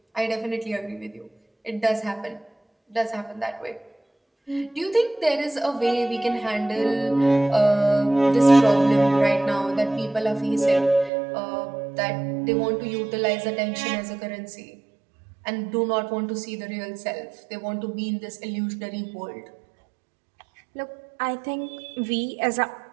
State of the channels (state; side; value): drops out; left; at 11.1 s